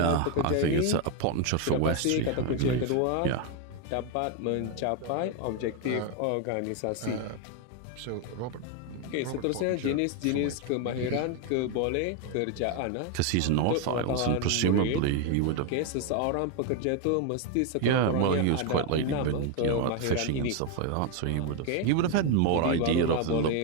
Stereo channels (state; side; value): different; both; correlation 0.01